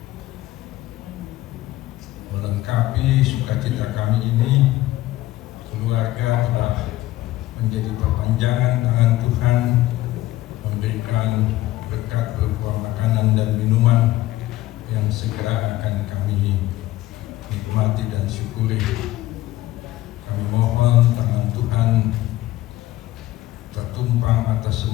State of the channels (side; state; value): right; quieter; 16.1 dB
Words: melengkapi sukacita kami ini. Keluarga telah menjadi perpanjangan tangan Tuhan, memberikan berkat berupa makanan dan minuman yang segera akan kami nikmati dan syukuri. Kami mohon tangan Tuhan tertumpang atas